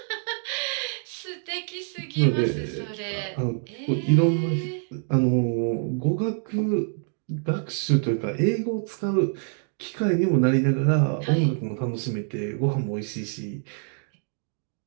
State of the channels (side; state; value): left; silent; 59 dB below the other